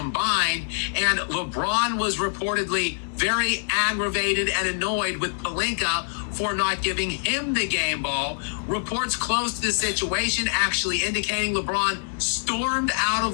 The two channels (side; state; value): right; silent; digital silence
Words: and LeBron was reportedly very aggravated and annoyed with Pelinka for not giving him the game ball. Reports close to the situation actually indicating LeBron stormed out